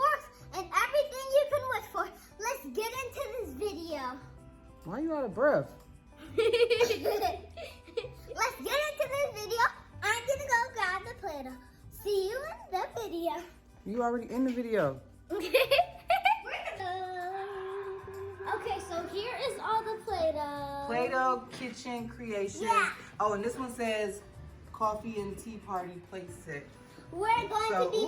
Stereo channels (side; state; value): both; identical; correlation 1.00